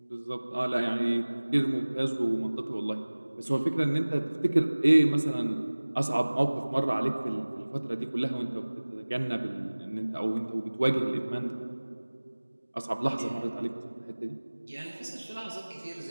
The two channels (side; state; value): both; inverted; correlation -1.00